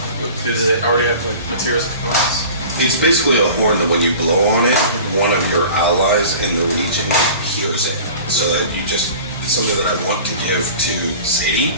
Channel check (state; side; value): inverted; both; correlation -0.41